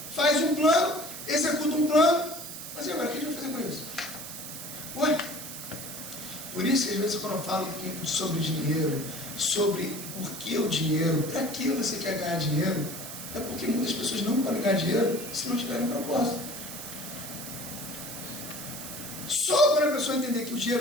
Faz um plano, executa um plano, mas e agora o que a gente vai isso, às vezes, quando eu falo sobre dinheiro, sobre por que o dinheiro, para que você quer ganhar dinheiro, é porque muitas pessoas não podem ganhar dinheiro se não tiverem propósito. Só quando a pessoa entender que o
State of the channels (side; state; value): right; noise; hiss, 9 dB below the sound